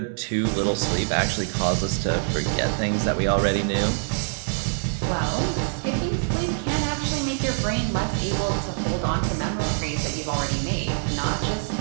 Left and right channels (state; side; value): silent; left; 62 dB below the other